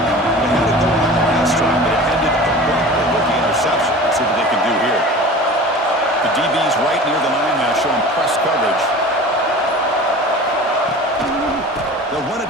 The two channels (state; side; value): normal; both; correlation 0.38